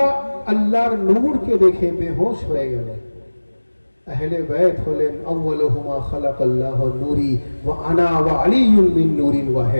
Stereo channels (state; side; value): inverted; both; correlation -1.00